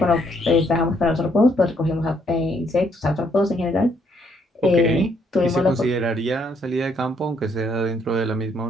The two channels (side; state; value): both; normal; correlation 0.70